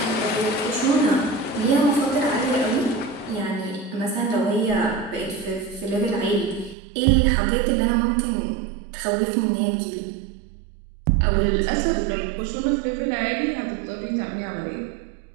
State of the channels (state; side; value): drops out; left; at 6.8 s